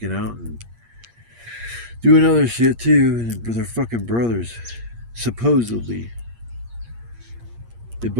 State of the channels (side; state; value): left; late; 8.6 ms